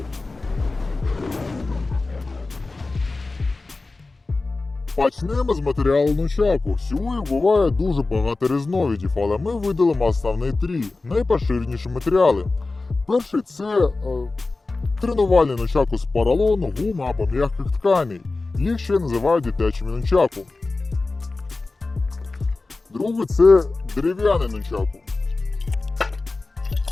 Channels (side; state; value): right; quieter; 3.5 dB